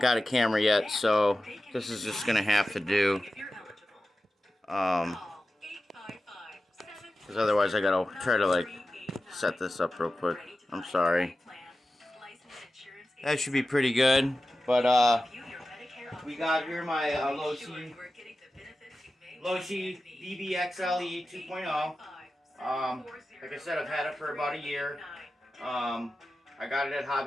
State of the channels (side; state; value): both; normal; correlation 0.94